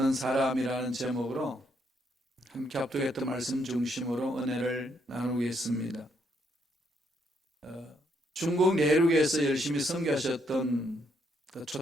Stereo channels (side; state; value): both; normal; correlation 0.74